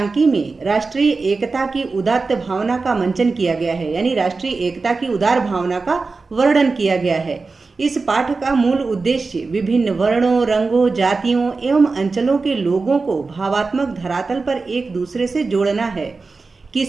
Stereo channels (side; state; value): left; quieter; 4.1 dB